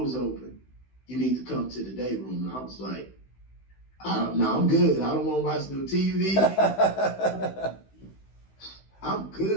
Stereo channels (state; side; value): late; right; 16 ms